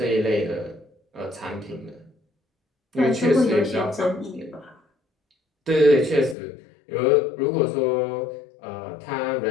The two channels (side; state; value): right; drops out; at 6.4 s